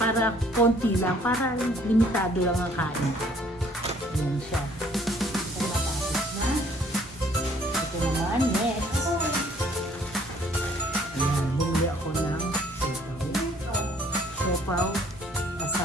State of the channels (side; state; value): both; normal; correlation 0.60